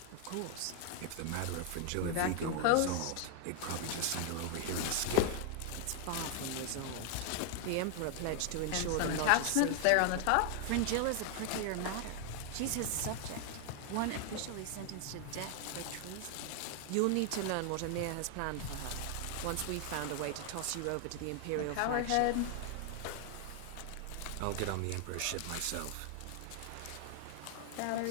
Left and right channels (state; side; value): different; both; correlation 0.00